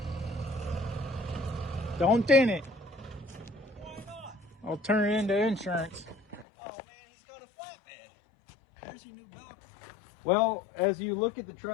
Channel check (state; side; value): drops out; right; at 6.5 s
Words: Don't dent it. Why not? I'll turn it into insurance. Oh man, he's got a flatbed. There's your new dock. Well, as you look at the